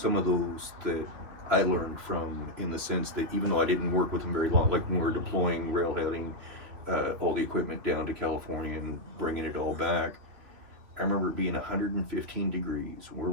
of those that I learned from, in the sense that even though I didn't work with them very long, like when we were deploying, railheading all the equipment down to California and bringing it all back, I remember it being 115 degrees. We're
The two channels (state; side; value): late; left; 3.4 ms